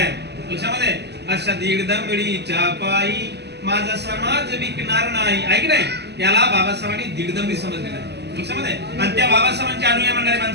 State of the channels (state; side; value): late; left; 0.49 ms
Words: लक्षामध्ये, अशा दीड दमडीच्या पायी माझा समाज विकणार नाही, ऐक नाही, याला बाबासाहेबांनी दीड दमडी समजलेलं आहे लक्षामध्ये. आणि त्या बाबासाहेबांचे अनुयायी म्हणणारे